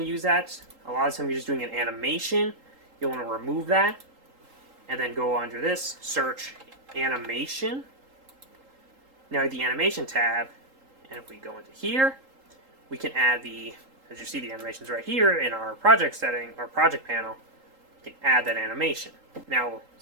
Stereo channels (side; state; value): left; late; 3.8 ms